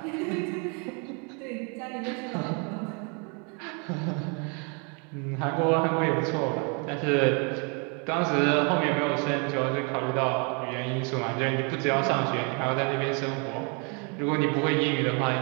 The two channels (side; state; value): left; quieter; 35.3 dB